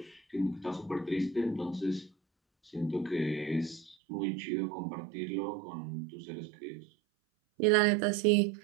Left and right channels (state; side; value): drops out; left; at 4.0 s